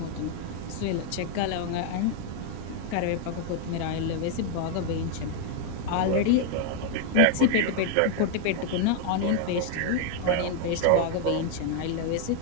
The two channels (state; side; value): different; both; correlation 0.00